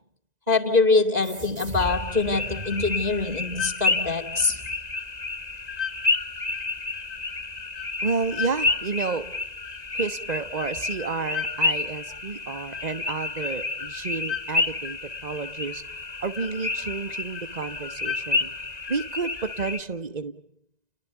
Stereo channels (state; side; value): late; left; 1.9 ms